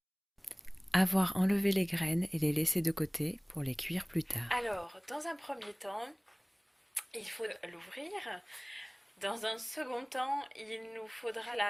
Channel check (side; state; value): both; identical; correlation 1.00